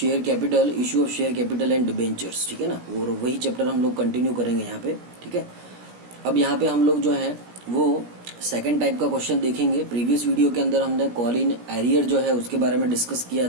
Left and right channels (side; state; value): left; late; 17 ms